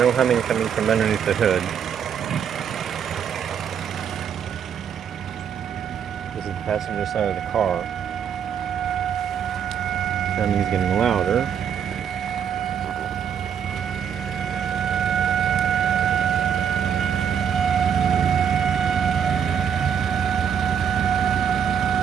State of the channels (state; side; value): quieter; left; 8.1 dB